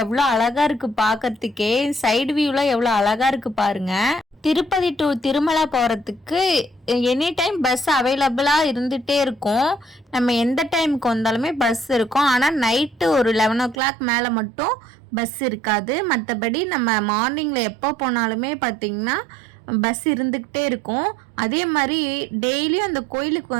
எவ்வளோ அழகாக இருக்குது பார்க்கறதுக்கே. சைடு வியூவில் எவ்வளோ அழகாக இருக்குது பாருங்க. திருப்பதி டு திருமலை போகிறதுக்கு எனி டைம் பஸ் அவைலபிளாக இருந்துகிட்டே இருக்கும். நம்ம எந்த டைமுக்கு வந்தாலுமே பஸ் இருக்கும். ஆனால் நைட்டு ஒரு 11 o'clock மேலே மட்டும் பஸ் இருக்காது. மற்றபடி நம்ம மார்னிங்கில் எப்போ போனாலுமே பார்த்திங்கன்னா பஸ் இருந்துக்கிட்டே இருக்கும். அதே மாதிரி டெய்லியும் அந்த கோயிலுக்கு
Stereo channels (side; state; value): left; drops out; at 13.8 s